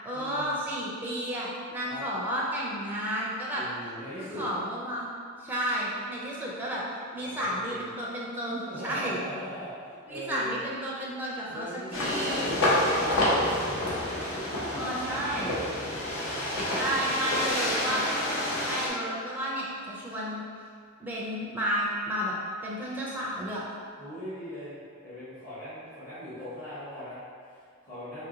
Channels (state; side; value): normal; both; correlation 0.09